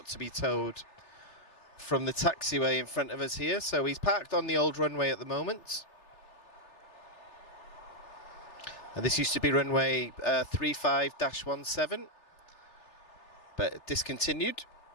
to be towed from the taxiway in front of us here. So he's parked on the old runway at the moment. This used to be runway 35-17, but discontinued.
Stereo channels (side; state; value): right; late; 3.3 ms